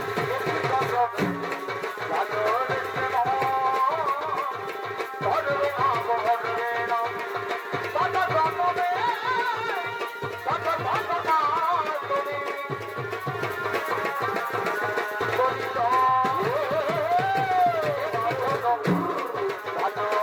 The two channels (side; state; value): both; identical; correlation 1.00